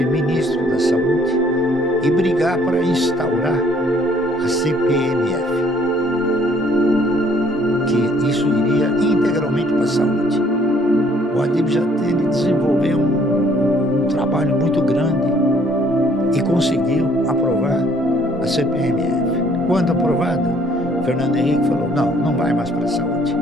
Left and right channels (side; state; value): both; normal; correlation 0.61